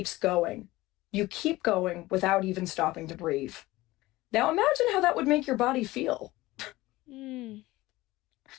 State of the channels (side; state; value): right; quieter; 18.8 dB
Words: going. You keep going without even stopping to breathe. Now imagine how that would make your body feel. Mm.